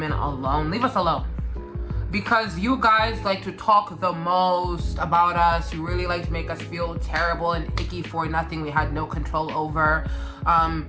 alone, leave us alone. Because you guys like to talk the most about us. You really like to make us feel terrible and icky for nothing we had no control over.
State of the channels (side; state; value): both; identical; correlation 1.00